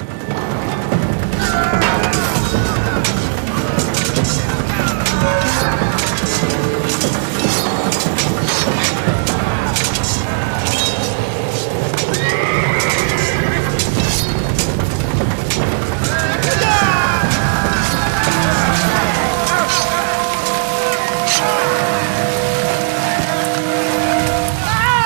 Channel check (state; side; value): silent; left; 61 dB below the other